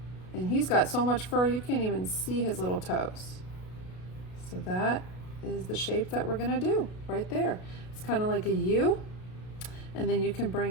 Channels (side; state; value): right; late; 33 ms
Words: And he's got so much fur you can't even see his little toes. So that is the shape that we're going to do right there. It's kind of like a U. And then you can